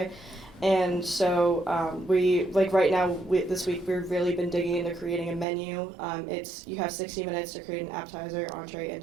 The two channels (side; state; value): left; drops out; at 5.5 s